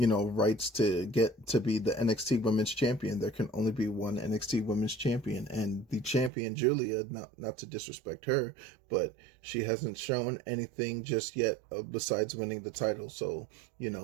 rights to get to be the NXT Women's Champion. There can only be one NXT Women's Champion, and the champion, Julia, not to disrespect her, but she hasn't shown anything just yet besides winning the title. So,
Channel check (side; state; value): left; drops out; at 6.3 s